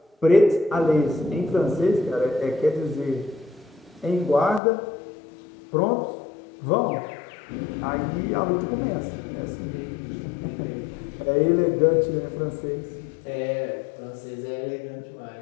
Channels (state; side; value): drops out; right; at 4.6 s